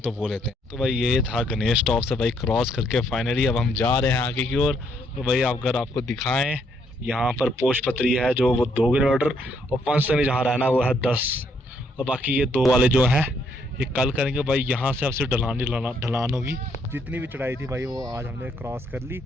वो लेते हैं। तो भाई ये था गणेश टॉप से भाई क्रॉस करके फाइनली अब हम जा रहे हैं आगे की ओर। तो भाई अगर आपको दिखाएं, यहाँ पर पोशपत्री है जो वो 2 किलोमीटर, और पंचतनी जहाँ रहना वो है 10, और बाकी ये 2 वाले जो हैं ये कल करेंगे। भाई यहाँ से अब सिर्फ ढलान होगी। जितनी भी चढ़ाई थी भाई वो आज हमने क्रॉस कर ली।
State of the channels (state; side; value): normal; both; correlation 0.71